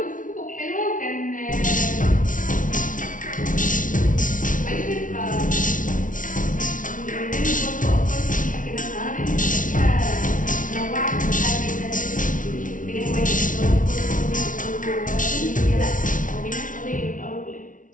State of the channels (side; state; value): right; late; 0.38 ms